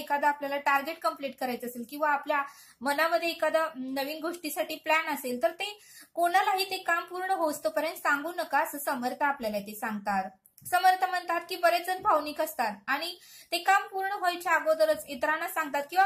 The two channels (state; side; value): identical; both; correlation 1.00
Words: आपल्याला टार्गेट कंप्लीट करायचं असेल किंवा आपल्या मनामध्ये एखादा नवीन गोष्टीसाठी प्लॅन असेल, तर ते कोणालाही ते काम पूर्ण होतोपर्यंत सांगू नका, असं समर्थ आपल्याला ते सांगतात. समर्थ म्हणतात की बरेच जण भावनिक असतात आणि ते काम पूर्ण व्हायच्या अगोदरच इतरांना सांगतात